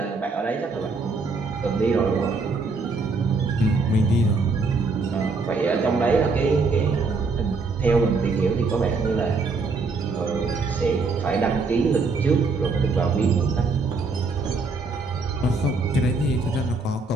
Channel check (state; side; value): quieter; left; 4.0 dB